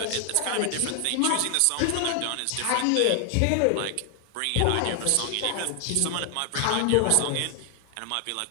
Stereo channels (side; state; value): both; different; correlation 0.00